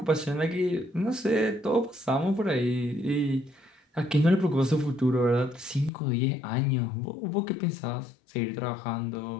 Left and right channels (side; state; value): right; drops out; at 5.9 s